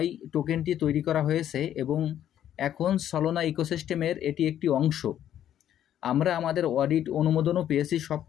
টোকেনটি তৈরি করা হয়েছে এবং এখন সলোনা ইকোসিস্টেমের এটি একটি অংশ। আমরা আমাদের অডিট অনুমোদনও পেয়েছি, সব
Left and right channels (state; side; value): quieter; right; 10.9 dB